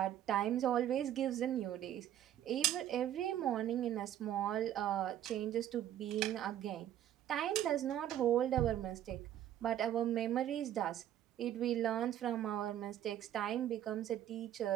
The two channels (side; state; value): left; quieter; 11.5 dB